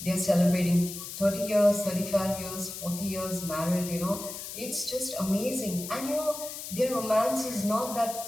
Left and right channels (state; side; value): noise; left; hiss, 9 dB below the sound